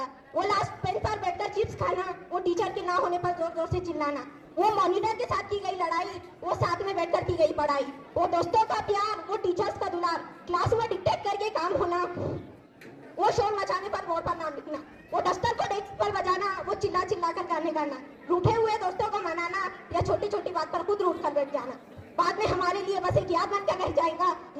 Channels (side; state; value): both; identical; correlation 1.00